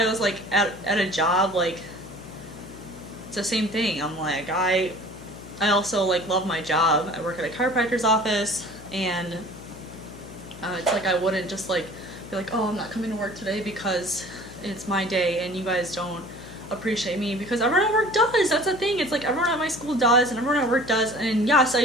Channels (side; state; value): left; noise; hum, 16 dB below the sound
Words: was like at a job, like, it's the same thing. I'm like, I also like love my job. I work at a chiropractor's office, and it's like I wouldn't just like be like, oh, I'm not coming to work today because it's my day and you guys don't appreciate me, because everyone at work does. That's the thing. It's like everyone at my school does and everyone at work does. And yes, I